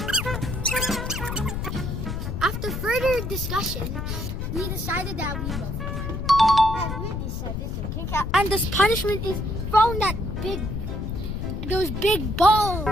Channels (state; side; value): noise; left; rumble, 4 dB below the sound